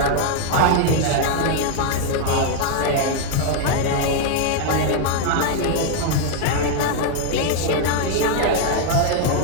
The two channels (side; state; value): both; different; correlation 0.00